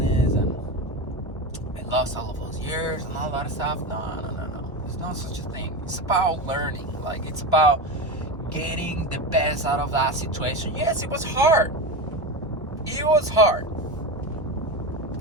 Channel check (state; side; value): normal; both; correlation 0.21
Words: and I lost all of those years and all that stuff. No. There's no such a thing. It's about learning. Like it's about getting the best out of that situation. Yes, it was hard. It was hard